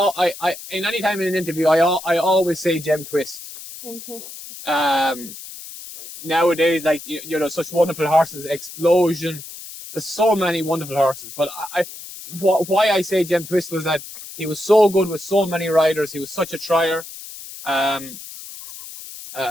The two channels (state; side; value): noise; left; hiss, 13 dB below the sound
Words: in any time in an interview, I always say Gem Twist. Gem Twist. Nowadays, like you know, such wonderful horses, Explosion. There's so many wonderful horses, but why I say Gem Twist was that he was so good with so many riders. He was such a trier. I